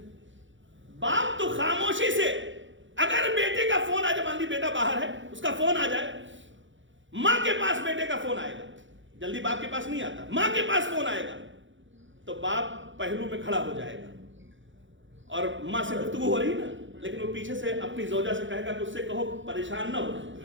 باپ تو خاموشی سے, اگر بیٹے کا فون آ جائے, مان لی بیٹا باہر ہے, اس کا فون آ جائے, ماں کے پاس بیٹے کا فون آئے گا, جلدی باپ کے پاس نہیں آتا, ماں کے پاس فون آئے گا تو باپ پہلو میں کھڑا ہو جائے گا, اور ماں سے گفتگو ہو رہی نا, لیکن وہ پیچھے سے اپنی زوجہ سے کہے گا کہ اس سے کہو پریشان نہ ہو,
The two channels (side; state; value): left; late; 0.55 ms